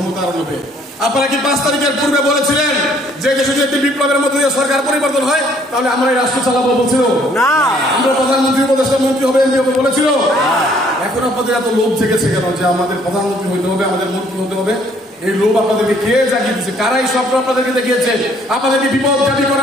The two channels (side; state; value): both; normal; correlation 0.62